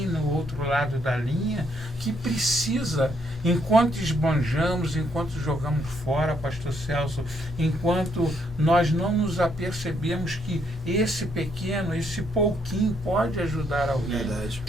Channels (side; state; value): both; normal; correlation 0.72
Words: no outro lado da linha que precisa, enquanto esbanjamos, enquanto jogamos fora, pastor Celso, enquanto nós não nos apercebemos que esse pequeno, esse pouquinho pode ajudar alguém. Verdade.